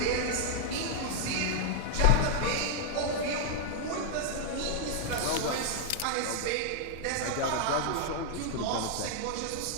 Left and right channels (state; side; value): different; both; correlation -0.01